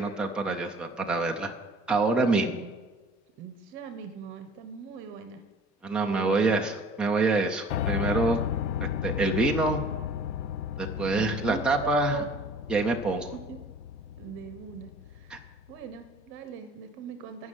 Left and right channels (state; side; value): normal; both; correlation 0.49